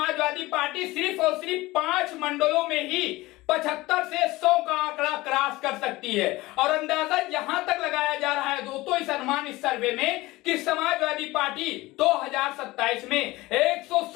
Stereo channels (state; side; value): quieter; right; 19.7 dB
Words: पार्टी सिर्फ और सिर्फ 5 मंडलों में ही 75 से 100 का आंकड़ा क्रॉस कर सकती है। और अंदाजा यहां तक लगाया जा रहा है दोस्तों इस अनुमान इस सर्वे में कि समाजवादी पार्टी 2027 में